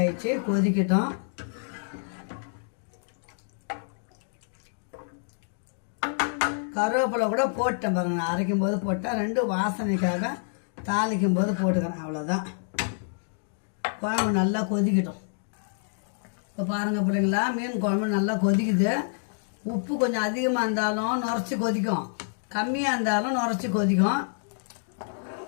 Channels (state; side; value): silent; right; digital silence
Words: கொதிக்கட்டும். கருவேப்பிலை கூட போட்டேன் பாருங்கள். நான் அரைக்கும் போது போட்டேன். 2 வாசனைக்காக தாளிக்கும் போது போட்டுக்கிறேன். அவ்வளோதான். குழம்பு நல்லா கொதிக்கட்டும். இப்போ பாருங்கள் பிள்ளைங்களா, மீன் குழம்பு நல்லா கொதிக்குது. உப்பு கொஞ்சம் அதிகமாக இருந்தாலும் நுரைச்சி கொதிக்கும், கம்மியாக இருந்தாலும் நுரைச்சி கொதிக்கும்.